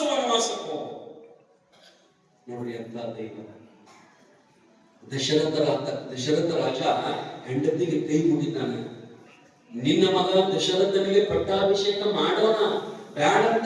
ವನವಾಸಕ್ಕೆ ಹೋಗ. ನೋಡಿ ಅಂತ ದೈವ. ದಶರಥ ರಾಜ ಹೆಂಡತಿಗೆ ಕೈ ಮುಗಿತಾನೆ. ನಿನ್ನ ಮಗ ದಶರಥನಿಗೆ ಪಟ್ಟಾಭಿಷೇಕ ಮಾಡೋಣ, ಬೇಡ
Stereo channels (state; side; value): identical; both; correlation 1.00